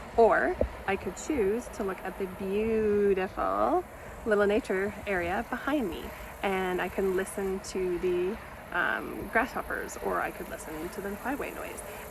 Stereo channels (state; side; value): identical; both; correlation 1.00